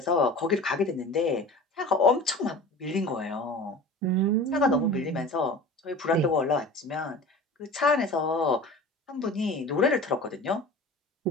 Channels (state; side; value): normal; both; correlation 0.38